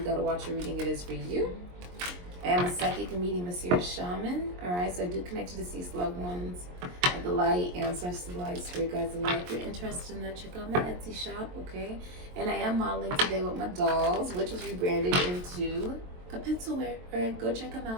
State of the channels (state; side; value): late; left; 22 ms